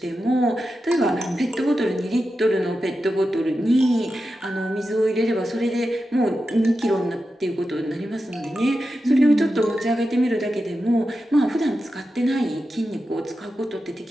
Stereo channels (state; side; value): normal; both; correlation 0.90